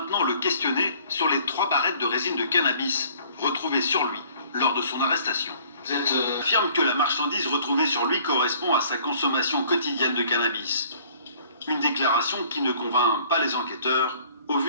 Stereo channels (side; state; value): both; inverted; correlation -0.56